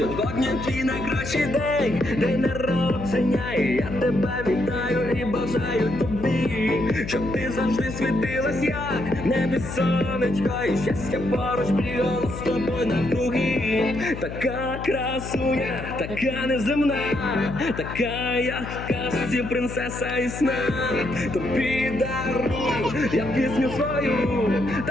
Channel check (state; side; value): noise; left; hum, 9 dB below the sound